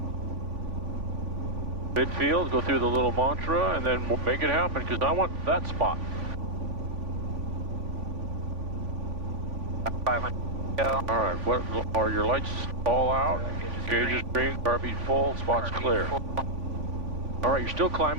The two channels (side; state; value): left; late; 3.5 ms